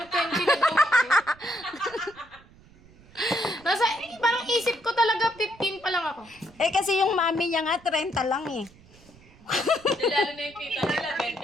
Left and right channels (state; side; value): noise; right; rumble, 25 dB below the sound